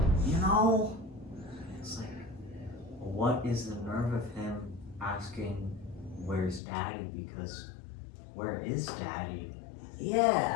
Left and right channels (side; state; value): right; drops out; at 6.6 s